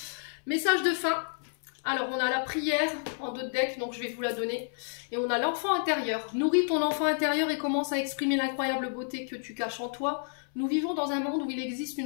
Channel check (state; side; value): silent; right; 58 dB below the other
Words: Message de fin. Alors, on a la prière en 2 decks, donc je vais vous la donner. Et on a l'enfant intérieur. Nourris ton enfant intérieur et commence à exprimer l'incroyable beauté que tu caches en toi. Nous vivons dans un monde où il existe